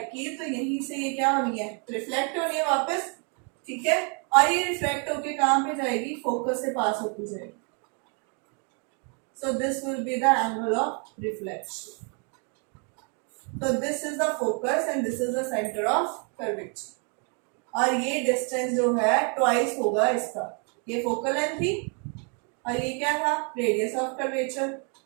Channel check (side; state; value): left; quieter; 38.7 dB